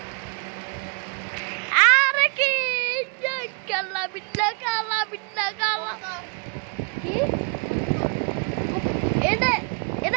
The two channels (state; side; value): quieter; left; 35.9 dB